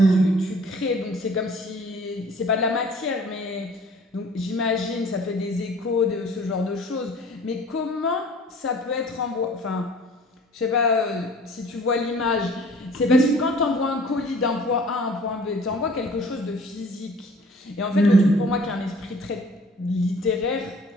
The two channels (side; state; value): both; normal; correlation 0.50